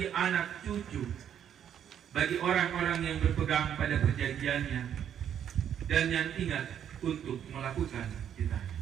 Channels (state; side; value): quieter; left; 9.4 dB